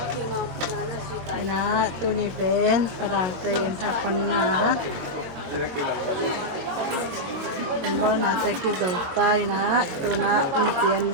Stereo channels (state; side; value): late; left; 22 ms